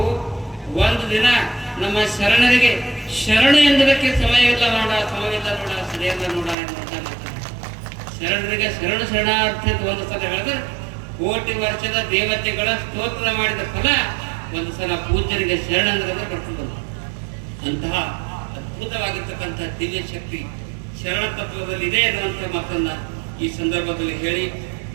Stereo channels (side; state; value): left; drops out; at 6.6 s